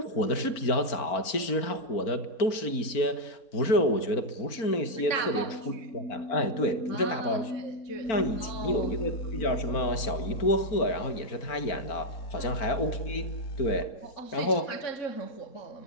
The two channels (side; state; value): right; late; 4.4 ms